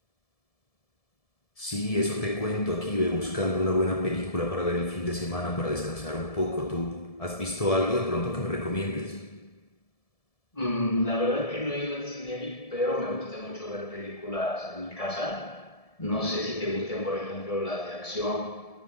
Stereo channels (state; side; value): late; right; 1.7 ms